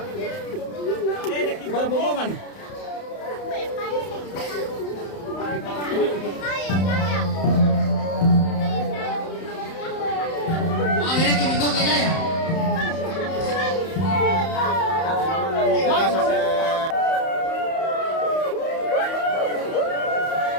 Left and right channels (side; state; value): right; late; 31 ms